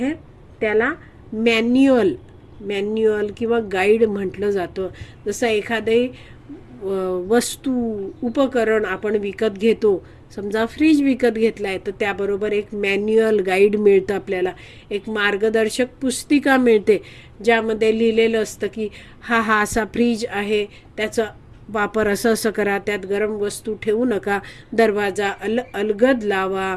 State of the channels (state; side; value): identical; both; correlation 1.00